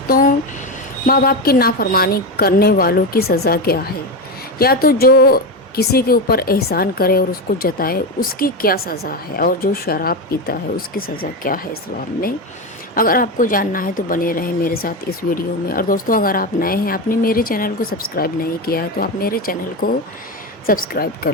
माँ बाप की नाफरमानी करने वालों की सज़ा क्या है, या तो जो किसी के ऊपर एहसान करे और उसको जताए उसकी क्या सज़ा है, और जो शराब पीता है उसकी सज़ा क्या है इस्लाम में। अगर आपको जानना है तो बने रहें मेरे साथ इस वीडियो में। और दोस्तों, अगर आप नए हैं, आपने मेरे चैनल को सब्सक्राइब नहीं किया है तो आप मेरे चैनल को सब्सक्राइब कर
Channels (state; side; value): normal; both; correlation 0.15